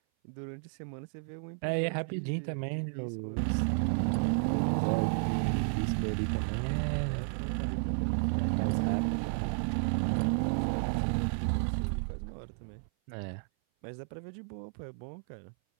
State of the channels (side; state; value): left; silent; 56 dB below the other